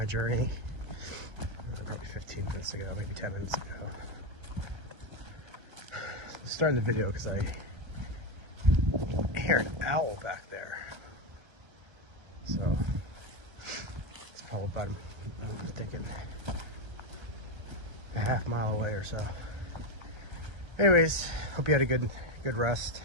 journey maybe 15 minutes ago, maybe 10 minutes ago. Starting the video because I hear an owl back there. So it's probably about, I'm thinking, a half mile away or so. Anyways, hope you had a good rest,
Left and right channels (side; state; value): left; late; 1.4 ms